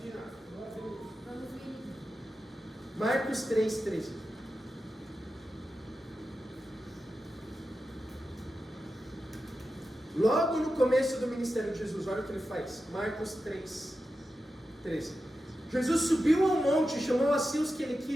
Marcos 3,13. Logo no começo do ministério de Jesus, olha o que ele faz. Marcos 3,13. Jesus subiu ao monte e chamou a si os que ele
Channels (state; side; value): normal; both; correlation 0.91